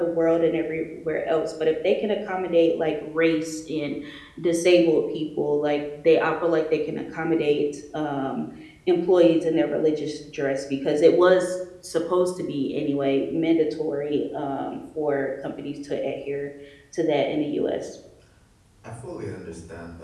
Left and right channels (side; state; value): both; identical; correlation 1.00